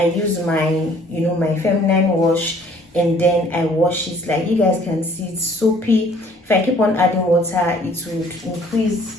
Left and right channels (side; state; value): both; normal; correlation 0.57